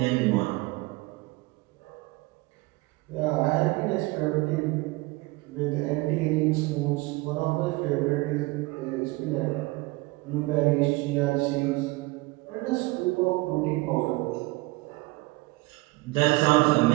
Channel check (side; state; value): left; quieter; 22.7 dB